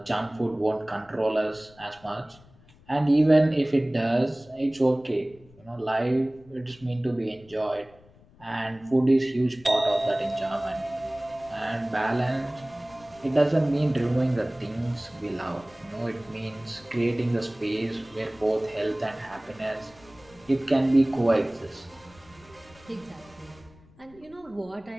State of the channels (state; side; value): noise; left; rumble, 26 dB below the sound